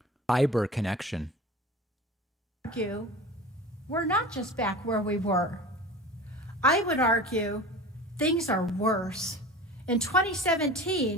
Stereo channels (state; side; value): normal; both; correlation 0.35